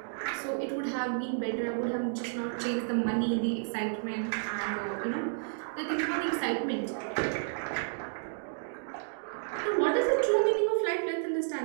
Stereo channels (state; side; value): silent; left; digital silence